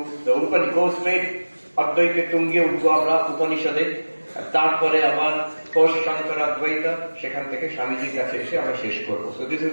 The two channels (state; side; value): inverted; both; correlation -1.00